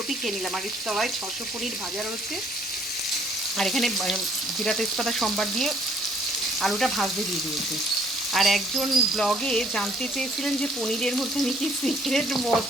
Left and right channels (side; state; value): both; normal; correlation 0.62